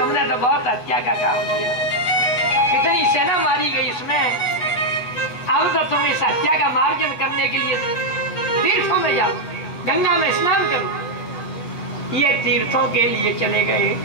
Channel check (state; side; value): late; right; 8.3 ms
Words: तो बहुत हत्या का काम किया, कितनी सेना मारी गई इसमें। अब तो तुम इस हत्या का मार्जन करने के लिए तीर्थों में जाओ, गंगा में स्नान करो। ये तीर्थों के लिए चले गए।